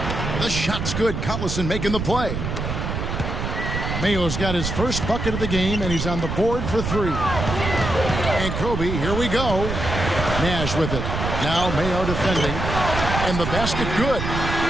The shot's good. Collison making the play. Mayo's got his first bucket of the game, and he's on the board for 3. And Kobe, here we go. Nash with it. Now Mayo defending. And the basket good.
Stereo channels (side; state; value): right; noise; rumble, 3 dB below the sound